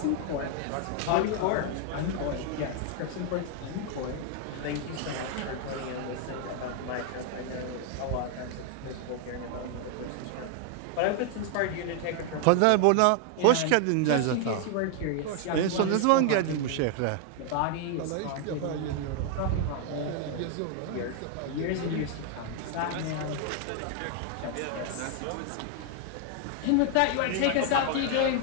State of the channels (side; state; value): both; different; correlation 0.00